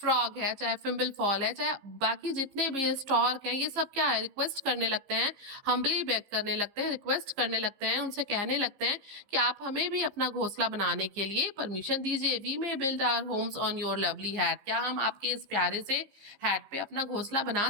है, चाहे फिम्बल फॉल है, चाहे बाकी जितने भी स्टॉर्क हैं, ये सब क्या है? रिक्वेस्ट करने लगते हैं, हम्बली बेग करने लगते हैं, रिक्वेस्ट करने लगते हैं, उनसे कहने लगते हैं कि आप हमें भी अपना घोंसला बनाने के लिए परमिशन दीजिए। We may build our homes on your lovely hat, क्या हम आपके इस प्यारे से हैट पे अपना घोंसला बना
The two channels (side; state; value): left; late; 15 ms